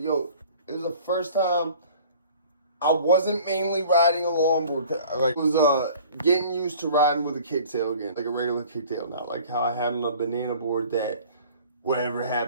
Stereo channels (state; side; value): inverted; both; correlation -0.48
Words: yo, it was the first time I wasn't mainly riding a longboard. Like, I was getting used to riding with a kicktail again. Like a regular kicktail, not like how I had on a banana board that whatever